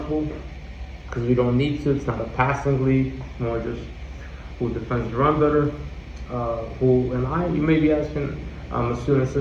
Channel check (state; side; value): identical; both; correlation 1.00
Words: because we don't need to. It's not a passing league, it's more just who defends the run better. Who am I? You may be asking. I'm a student